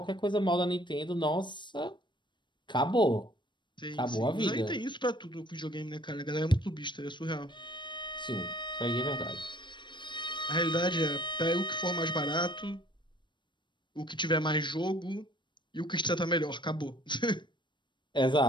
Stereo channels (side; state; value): right; late; 0.22 ms